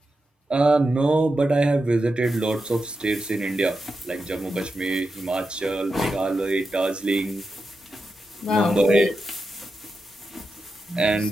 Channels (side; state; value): both; normal; correlation 0.89